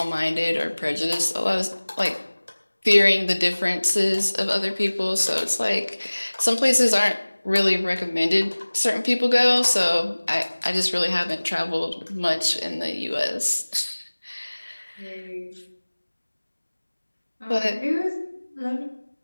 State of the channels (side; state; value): both; inverted; correlation -1.00